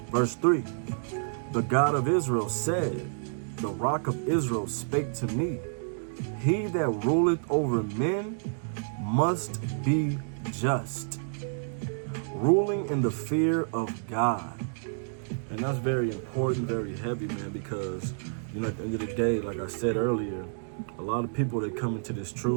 Verse 3. "The God of Israel said, the Rock of Israel spake to me, He that ruleth over men must be just, ruling in the fear of God." And that's very important, very heavy, man, because, at the end of the day, like I said earlier, a lot of people, they come into this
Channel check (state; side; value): silent; left; digital silence